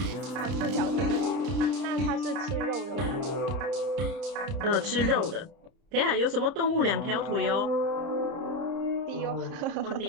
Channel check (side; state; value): left; late; 30 ms